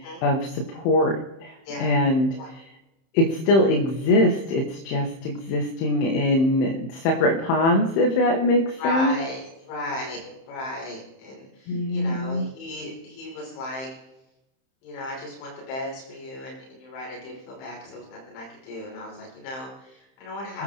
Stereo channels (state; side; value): late; right; 31 ms